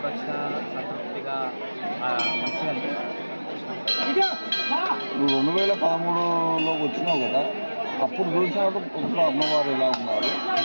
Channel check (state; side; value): inverted; both; correlation -1.00